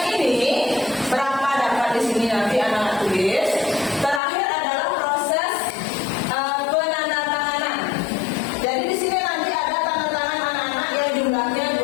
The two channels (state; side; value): drops out; right; at 4.2 s